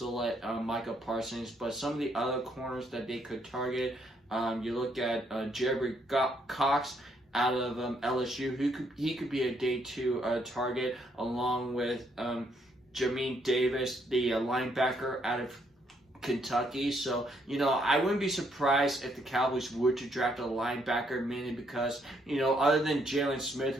Micah Parsons. But some of the other corners that they could target, you look at Jerry Cox out of LSU. He could be a day 2 target, along with Jamin Davis, the linebacker out of Kentucky. So, I wouldn't be surprised if the Cowboys were to draft a linebacker, mainly because, other than Jalen Smith,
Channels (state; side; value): normal; both; correlation 0.72